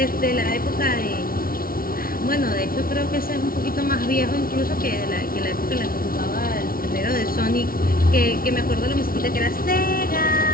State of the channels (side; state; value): right; late; 0.43 ms